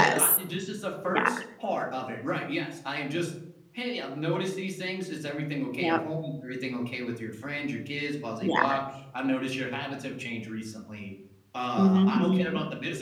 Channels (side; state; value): both; identical; correlation 1.00